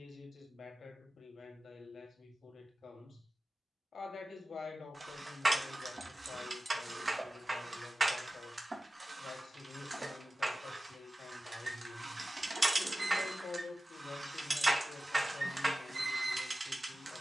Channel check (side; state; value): both; normal; correlation 0.95